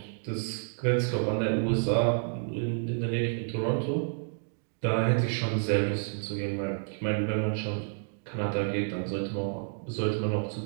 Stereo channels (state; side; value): silent; left; digital silence